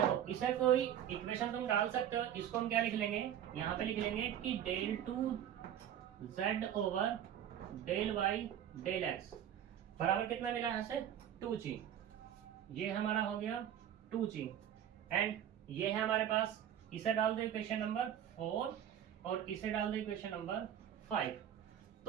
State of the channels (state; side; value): quieter; left; 10.3 dB